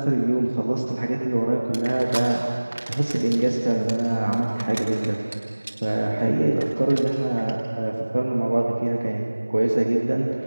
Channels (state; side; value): inverted; both; correlation -1.00